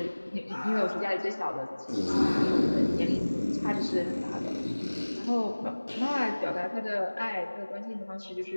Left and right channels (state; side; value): inverted; both; correlation -1.00